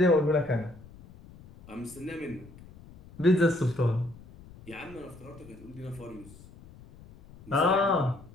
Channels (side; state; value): left; noise; rumble, 21 dB below the sound